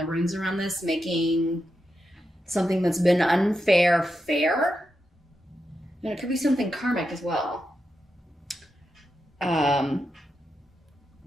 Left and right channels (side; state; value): both; normal; correlation 0.87